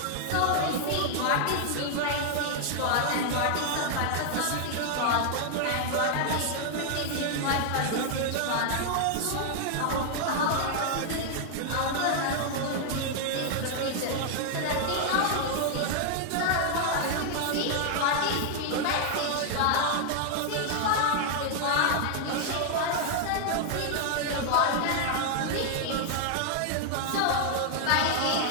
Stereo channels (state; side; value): different; both; correlation 0.00